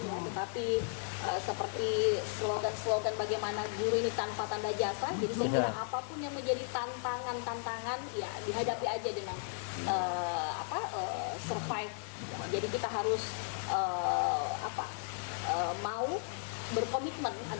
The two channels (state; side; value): silent; right; digital silence